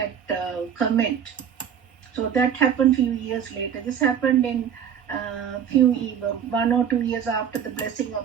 comment. So that happened few years later. This happened in few 1 or 2 years after the blessing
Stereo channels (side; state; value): left; quieter; 8.4 dB